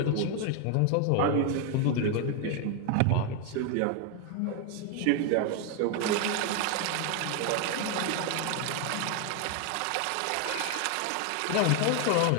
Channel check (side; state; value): both; different; correlation 0.01